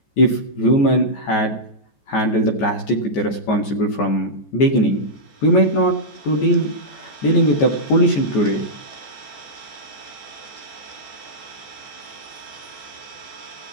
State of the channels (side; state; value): right; late; 14 ms